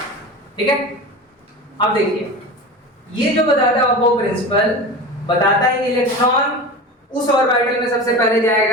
ठीक है। अब देखिए, ये जो बताता है अबव प्रिंसिपल, बताता है कि इलेक्ट्रॉन उस ऑर्बिटल में सबसे पहले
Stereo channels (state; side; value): normal; both; correlation 0.30